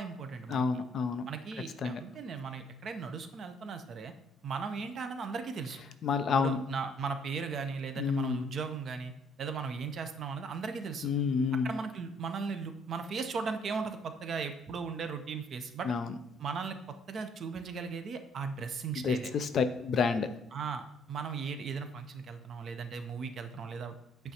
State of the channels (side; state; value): both; normal; correlation 0.64